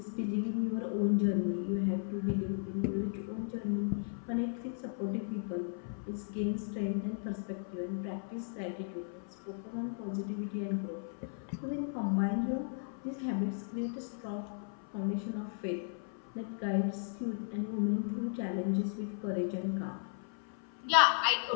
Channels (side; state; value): right; silent; 54 dB below the other